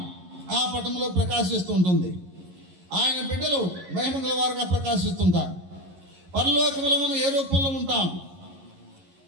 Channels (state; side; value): late; left; 11 ms